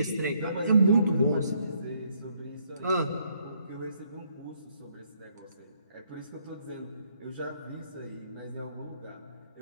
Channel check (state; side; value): inverted; both; correlation -0.70